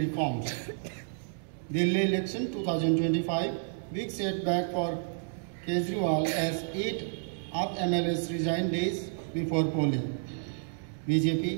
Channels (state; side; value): silent; left; digital silence